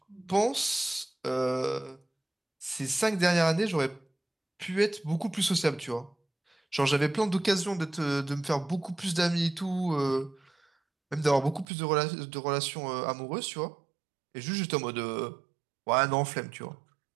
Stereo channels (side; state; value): left; drops out; at 11.7 s